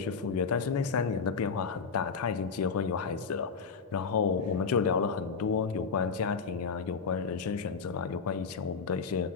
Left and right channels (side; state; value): right; quieter; 5.5 dB